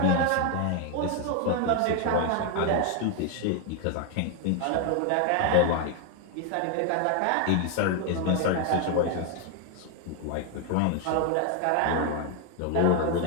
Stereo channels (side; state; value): both; different; correlation 0.01